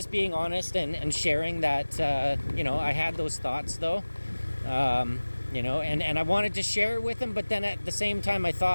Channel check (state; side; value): inverted; both; correlation -1.00